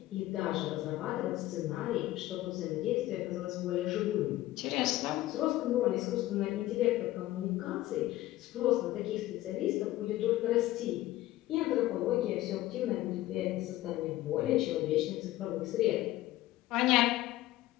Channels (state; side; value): quieter; right; 15.9 dB